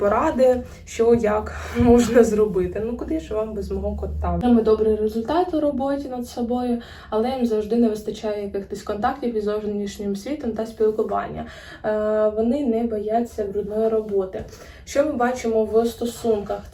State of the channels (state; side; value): identical; both; correlation 1.00